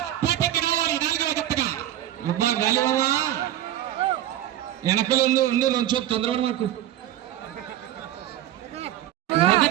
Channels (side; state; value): left; quieter; 12.9 dB